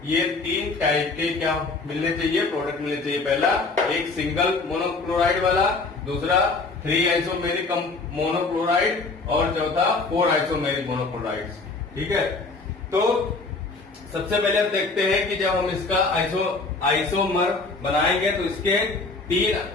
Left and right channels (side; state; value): right; quieter; 3.7 dB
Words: ये 3 टाइप के क्या मिलने चाहिए, प्रोडक्ट मिलने चाहिए। पहला एक सिंगल मोनोक्लोराइड वाला, दूसरा 3 आइसोमेरिक मोनोक्लोराइड और चौथा 4 आइसोमेरिक मोनोक्लोराइड। ठीक है, तो सबसे पहले हम देखते हैं कि जब हम इसका आइसोमर बनाएंगे तो इसके